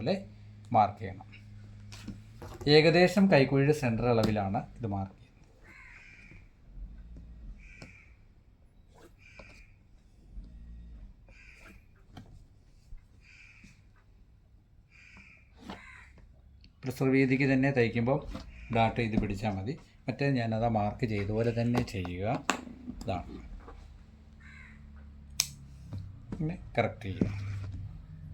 മാർക്ക് ചെയ്യണം. ഏകദേശം കൈക്കുഴിയുടെ സെൻറ്റർ അളവിലാണ് ഇത് മാർക്ക് ചെയ്യുന്നത്. പ്രസർ വീതിക്ക് തന്നെ തയ്ക്കുമ്പോൾ ഡാട്ട് ഇത് പിടിച്ചാൽ മതി. മറ്റേ ഞാനത് മാർക്ക് ചെയ്തതുപോലെ തന്നെ ചെയ്യുക. ഇതാണ് പിന്നെ കറക്റ്റ് ചെയ്യുക.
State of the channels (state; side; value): identical; both; correlation 1.00